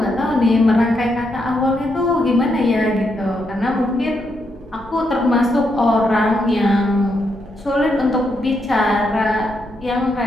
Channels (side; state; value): both; normal; correlation 0.80